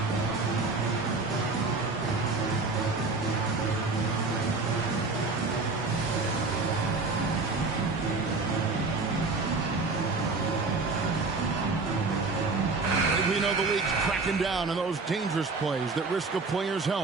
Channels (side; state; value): left; quieter; 3.9 dB